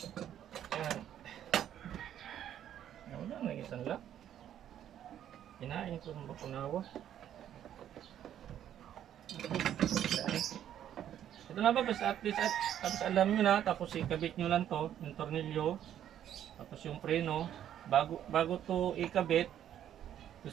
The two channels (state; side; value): quieter; left; 10.6 dB